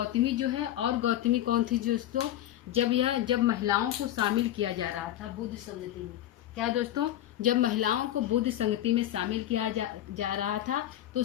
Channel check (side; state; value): right; quieter; 12.7 dB